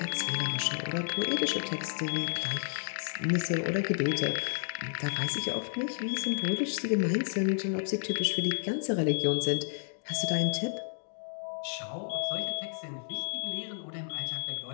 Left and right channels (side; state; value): right; silent; digital silence